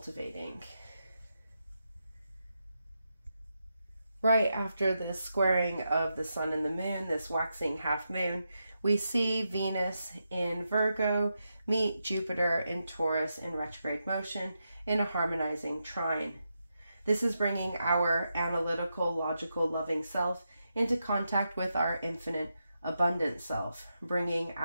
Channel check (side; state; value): both; inverted; correlation -0.86